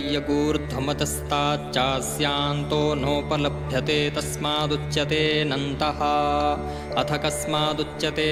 नोपलभ्यते तस्मादुच्यतेऽनन्तः। अथ कस्मादुच्यते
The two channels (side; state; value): both; identical; correlation 1.00